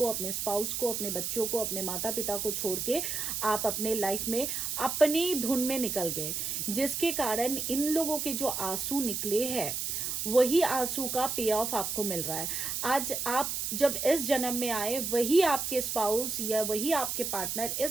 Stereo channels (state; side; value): noise; right; hiss, 2 dB below the sound